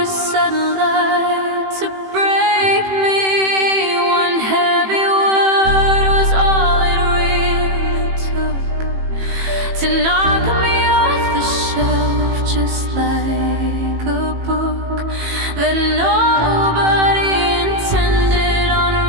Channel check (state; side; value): late; left; 18 ms